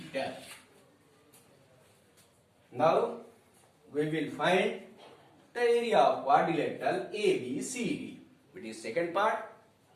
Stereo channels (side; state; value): both; identical; correlation 1.00